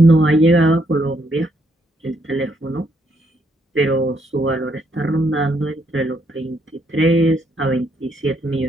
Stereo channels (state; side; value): normal; both; correlation 0.74